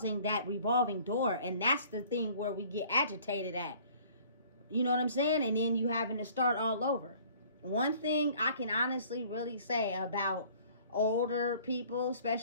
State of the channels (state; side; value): inverted; both; correlation -0.54